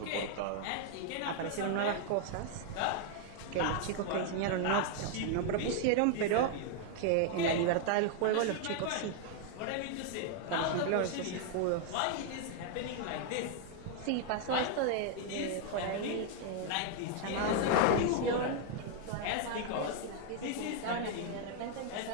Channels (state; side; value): different; both; correlation 0.00